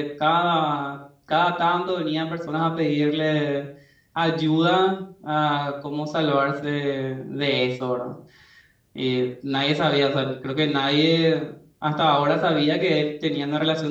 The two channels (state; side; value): identical; both; correlation 1.00